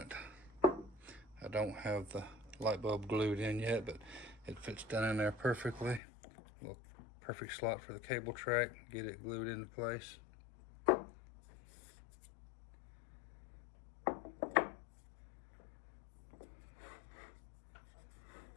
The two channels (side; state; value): right; drops out; at 6.0 s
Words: I don't have the light bulb glued in yet, but it fits down in there perfectly. A little perfect slot for the cable track. Get it glued into place.